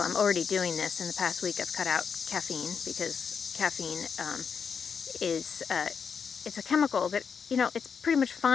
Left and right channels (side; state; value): right; quieter; 6.4 dB